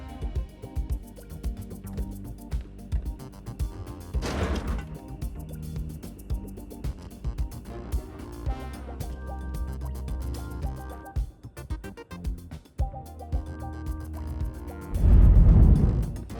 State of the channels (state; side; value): identical; both; correlation 1.00